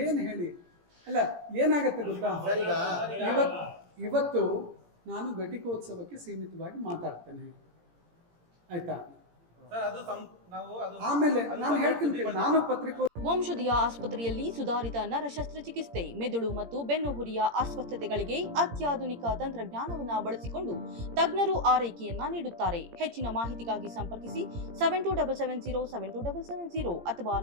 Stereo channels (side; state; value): left; late; 17 ms